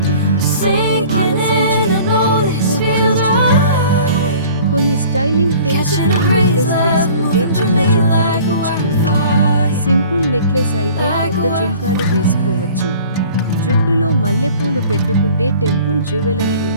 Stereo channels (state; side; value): inverted; both; correlation -0.47